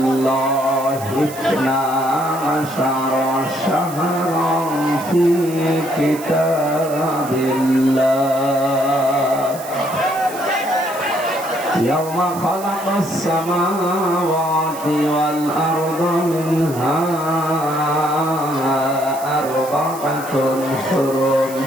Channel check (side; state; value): right; noise; hiss, 15 dB below the sound